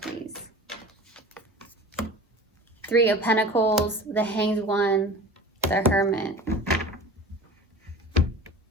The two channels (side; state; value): both; normal; correlation 0.39